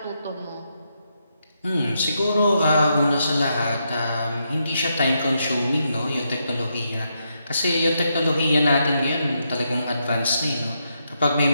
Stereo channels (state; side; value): inverted; both; correlation -0.81